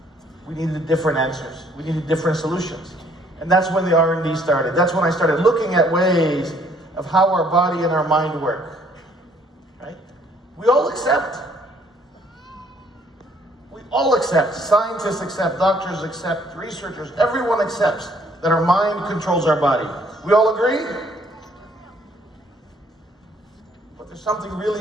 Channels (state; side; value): normal; both; correlation 0.63